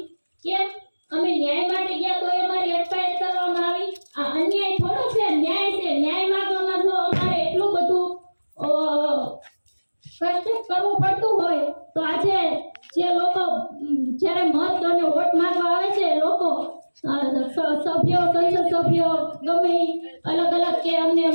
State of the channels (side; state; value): both; inverted; correlation -1.00